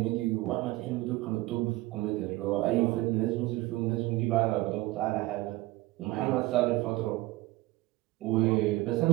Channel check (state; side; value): quieter; left; 18.9 dB